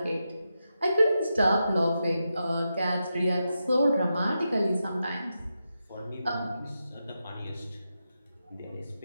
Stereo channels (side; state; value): both; inverted; correlation -0.88